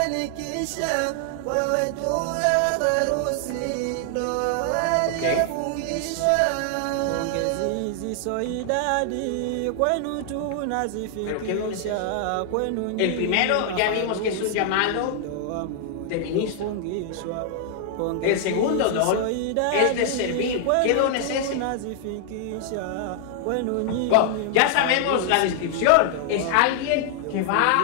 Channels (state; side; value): different; both; correlation 0.00